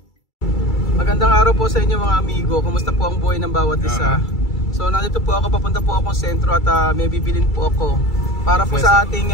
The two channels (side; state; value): right; late; 2.3 ms